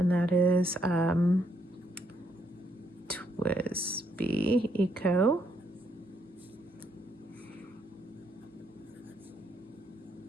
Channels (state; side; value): normal; both; correlation 0.74